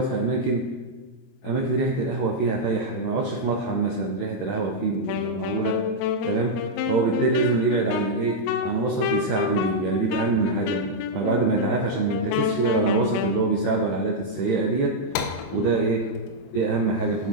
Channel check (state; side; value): late; right; 22 ms